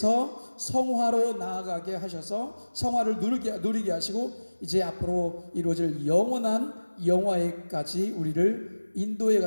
성화로 나아가게 하셔서 성화를 누리게 하시고 이제 앞으로 이루어질 영원한 영화에까지 우리를 인도해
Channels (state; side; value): inverted; both; correlation -1.00